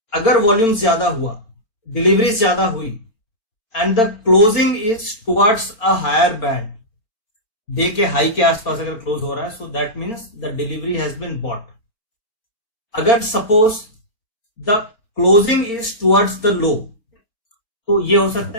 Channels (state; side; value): late; right; 4.4 ms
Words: अगर वॉल्यूम ज्यादा हुआ, डिलीवरी ज्यादा हुई and the closing is towards a higher band, day के हाई के आसपास अगर क्लोज हो रहा है, so that means the delivery has been bought. अगर suppose the closing is towards the low, तो ये हो सकता